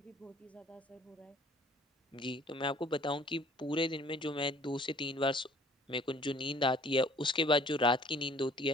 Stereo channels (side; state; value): both; normal; correlation 0.54